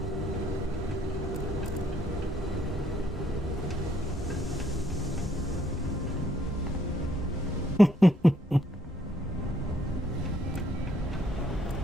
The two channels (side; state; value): both; normal; correlation 0.69